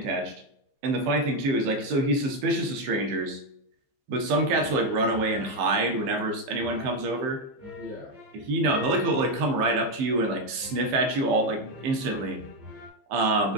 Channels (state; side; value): late; left; 15 ms